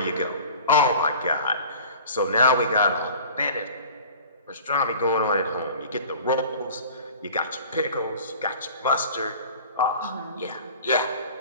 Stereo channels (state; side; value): inverted; both; correlation -0.42